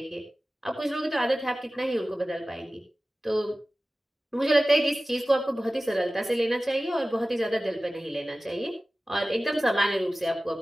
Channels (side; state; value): both; normal; correlation 0.96